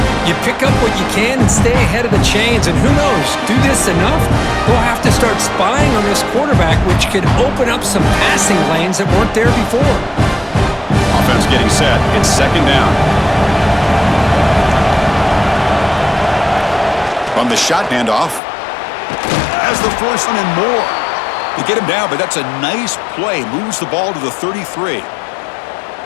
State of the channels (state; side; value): drops out; right; at 18.4 s